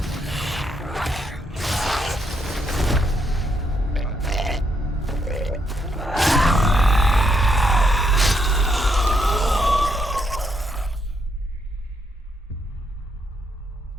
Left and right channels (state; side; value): normal; both; correlation 0.76